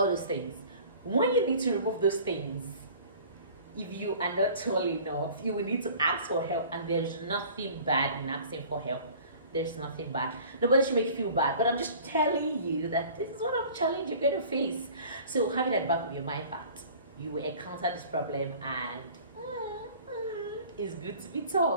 those things. When you need to remove those things, if you are not tall enough, you will need to ask for help, and there's nothing bad in asking for help. There's nothing bad. Nobody should make you feel bad, but I'm just telling you that this is one of the challenges you're going to face. So have it at the back of your mind that you will encounter this problem, and it's good to be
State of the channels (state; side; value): inverted; both; correlation -0.46